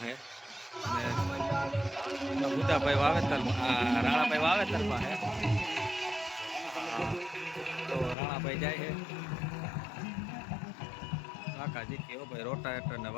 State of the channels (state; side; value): drops out; right; at 8.2 s